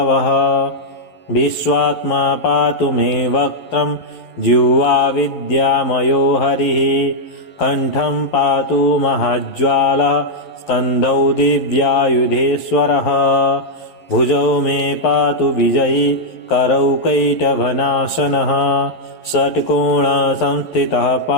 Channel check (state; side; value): late; right; 11 ms